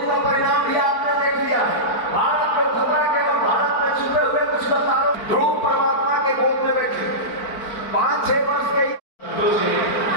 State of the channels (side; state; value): right; late; 4.5 ms